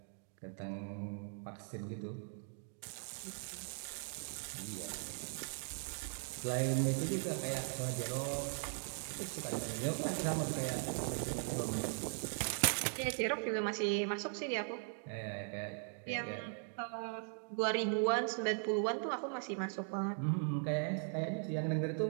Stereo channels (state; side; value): silent; left; 51 dB below the other